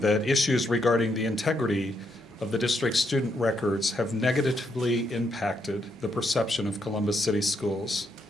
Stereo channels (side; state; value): both; normal; correlation 0.77